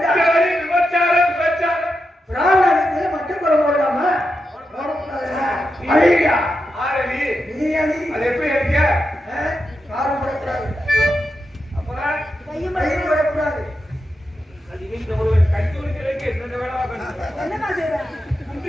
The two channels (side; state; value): both; normal; correlation 0.87